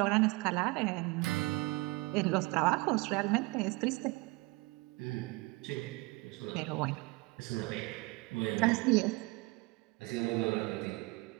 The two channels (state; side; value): quieter; left; 24.3 dB